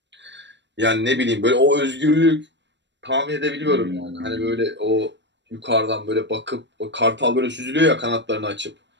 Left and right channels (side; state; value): left; late; 0.52 ms